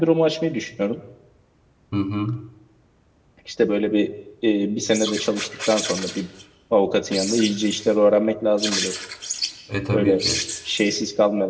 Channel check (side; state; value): both; identical; correlation 1.00